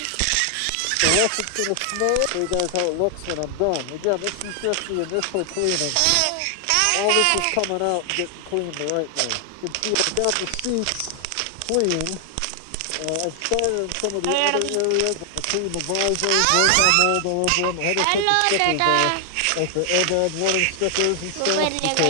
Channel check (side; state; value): both; different; correlation 0.00